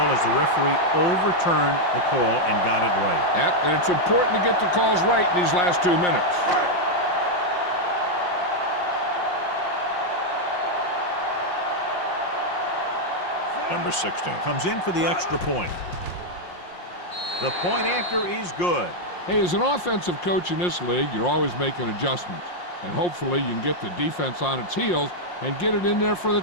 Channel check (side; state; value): right; late; 5.6 ms